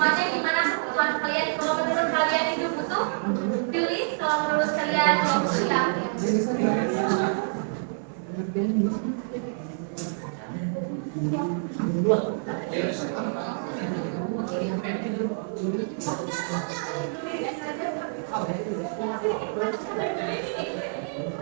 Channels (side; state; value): left; silent; digital silence